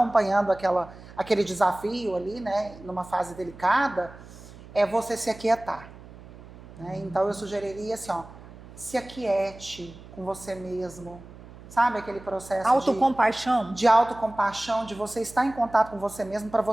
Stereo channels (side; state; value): right; noise; hum, 18 dB below the sound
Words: aquele desafio ali, né, numa fase delicada, é você se aquietar. Né? Então, eu sugeriria assim, ó, se aquiete com você mesmo, sabe aquele processo autocompaixão. de autocompaixão, de você estar em contato com você mesmo, para